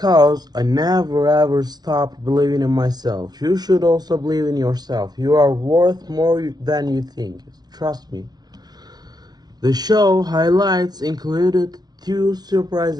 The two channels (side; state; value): left; late; 0.19 ms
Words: I never ever stopped believing in myself. You should also believe in yourself. You are worth more than you think. Trust me. The show highlights included two surprise